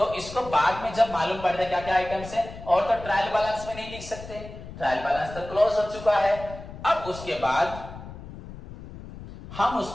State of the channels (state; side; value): noise; left; rumble, 14 dB below the sound